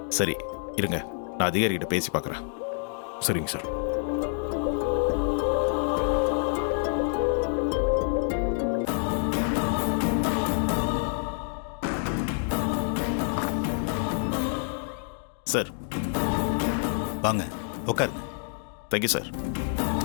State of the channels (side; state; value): right; silent; 60 dB below the other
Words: சரி இருங்க, நான் அதிகாரிகிட்ட பேசி பார்க்குறேன். சரிங்க சார். சார் வாங்க உட்காருங்க. Thank you sir.